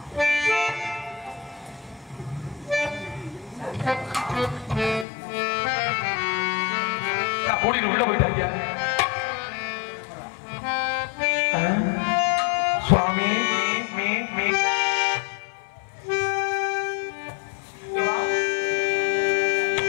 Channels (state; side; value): drops out; right; at 5.1 s